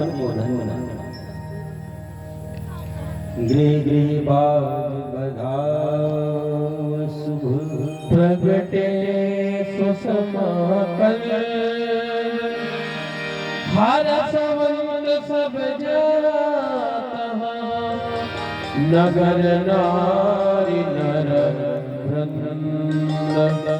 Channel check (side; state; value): both; identical; correlation 1.00